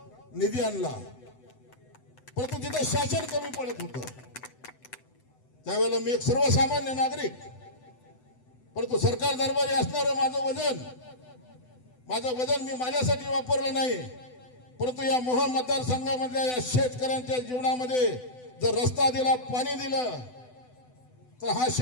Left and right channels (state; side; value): late; right; 8.0 ms